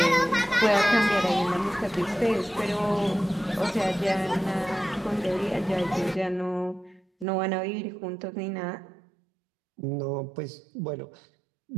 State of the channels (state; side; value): drops out; left; at 7.2 s